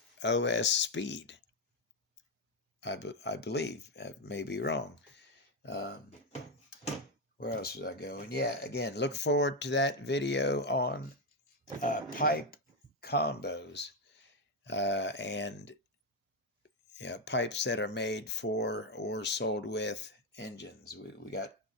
OS Speed? I believe. I may be wrong. Where else was I going? Yeah, again, look forward to that video on pipe combos and pipes that are made for or sold with engines. We got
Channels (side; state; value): both; normal; correlation 0.06